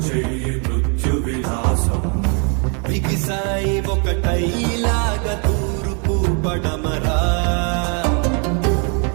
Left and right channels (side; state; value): left; quieter; 36.5 dB